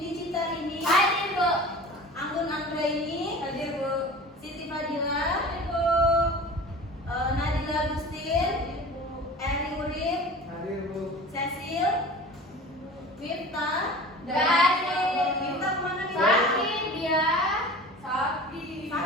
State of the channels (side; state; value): both; normal; correlation 0.38